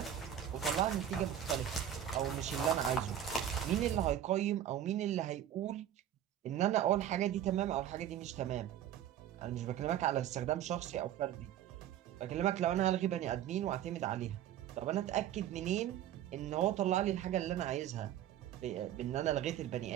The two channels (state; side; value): quieter; left; 10.7 dB